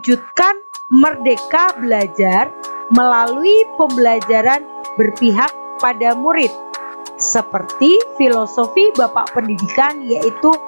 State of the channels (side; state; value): both; inverted; correlation -1.00